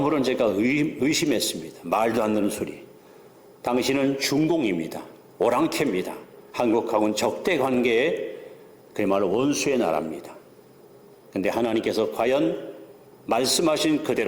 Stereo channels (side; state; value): both; identical; correlation 1.00